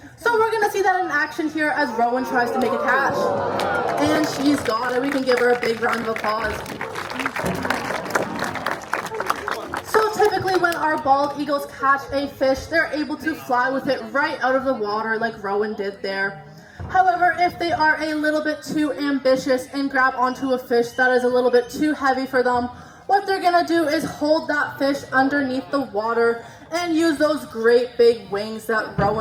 So we're going to see that in action here as Rowan tries to make a catch. And she's got it. We can give her a big round of applause. So typically when our bald eagles catch a fish, they're able to fly with it right out of the water like Rowan did there. However, if they are a little bit too ambitious and grab onto a fish that is a little bit too heavy for them, what they're going to do is hold that fish underneath the water and use those great big wings that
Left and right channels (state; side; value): identical; both; correlation 1.00